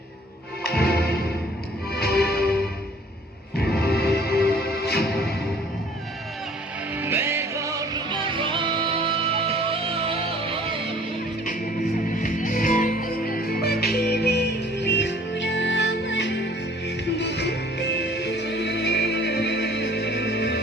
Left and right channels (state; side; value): normal; both; correlation 0.54